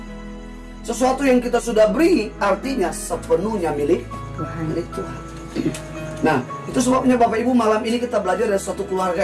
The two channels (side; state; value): both; identical; correlation 1.00